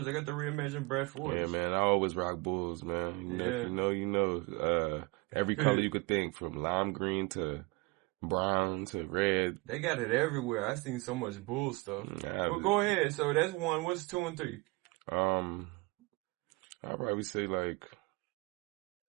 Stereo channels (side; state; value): left; quieter; 25.5 dB